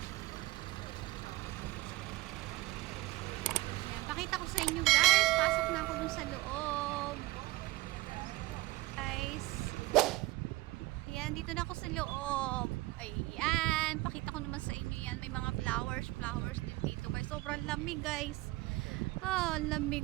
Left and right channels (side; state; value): left; quieter; 20.1 dB